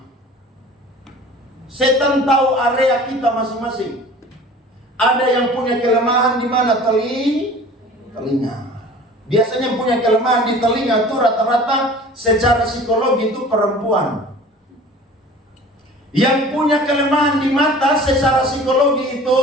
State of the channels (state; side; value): normal; both; correlation 0.43